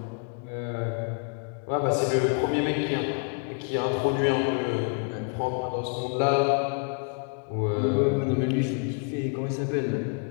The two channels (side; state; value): right; quieter; 39.9 dB